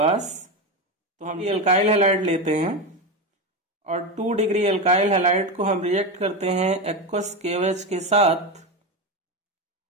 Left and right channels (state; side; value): normal; both; correlation 0.16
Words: तो हम ये अल्काइल हैलाइड लेते हैं और 2 डिग्री अल्काइल हैलाइड को हम रिएक्ट करते हैं एक्वस KOH के साथ